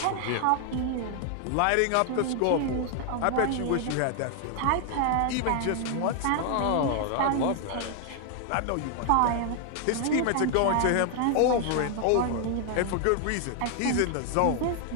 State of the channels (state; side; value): different; both; correlation 0.00